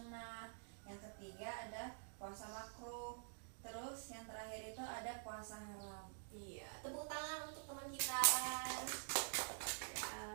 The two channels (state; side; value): silent; left; digital silence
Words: yang ketiga ada puasa makruh, terus yang terakhir itu ada puasa haram. Iya, tepuk tangan untuk teman kita.